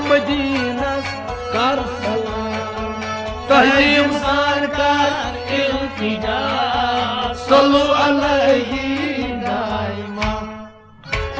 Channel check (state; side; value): identical; both; correlation 1.00